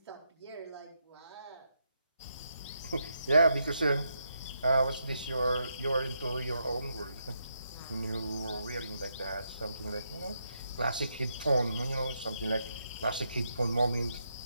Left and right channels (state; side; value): inverted; both; correlation -0.81